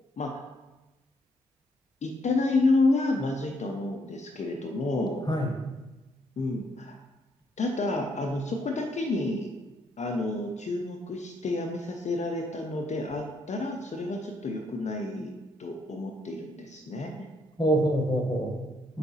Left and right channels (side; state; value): both; normal; correlation 0.73